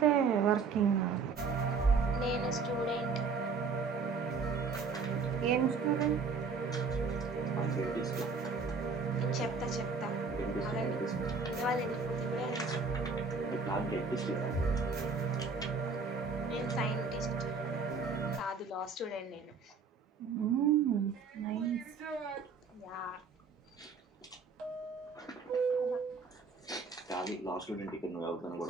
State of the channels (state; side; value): quieter; left; 4.8 dB